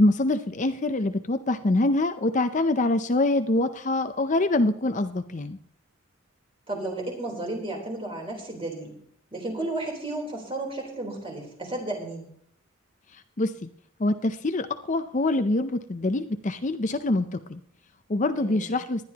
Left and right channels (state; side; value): normal; both; correlation 0.52